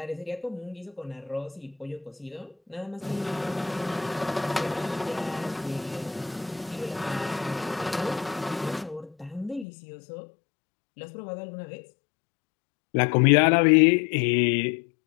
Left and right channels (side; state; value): right; drops out; at 9.7 s